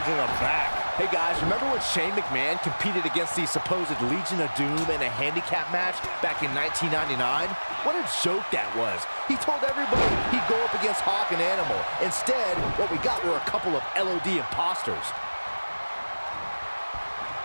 to the back. Hey guys, remember when Shane McMahon competed against the supposed Legion of Doom in a handicap match back in 1999? What a joke that was. He told everybody he'd go up against Hawk and Animal. Instead, what we got were a couple of LOD imposters.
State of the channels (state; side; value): inverted; both; correlation -1.00